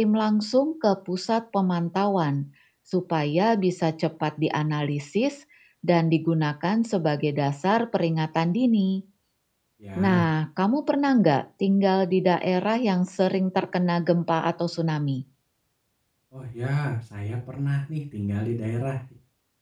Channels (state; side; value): identical; both; correlation 1.00